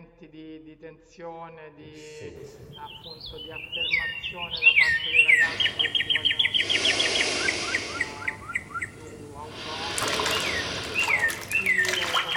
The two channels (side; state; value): both; identical; correlation 1.00